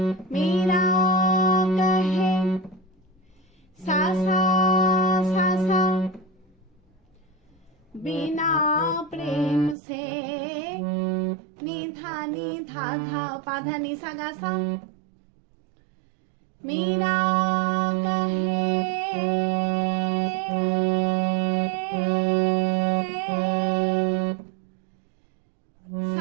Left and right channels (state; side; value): drops out; left; at 9.8 s